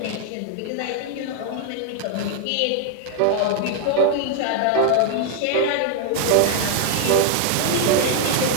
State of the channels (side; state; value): both; different; correlation 0.00